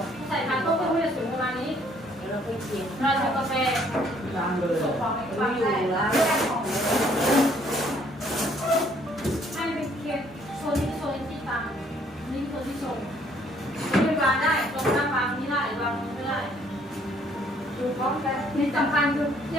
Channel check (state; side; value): normal; both; correlation 0.64